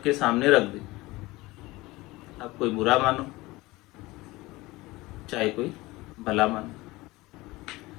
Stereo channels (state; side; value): quieter; right; 20.6 dB